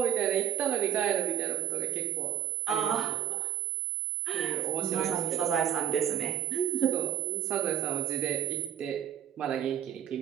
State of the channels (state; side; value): quieter; left; 10.1 dB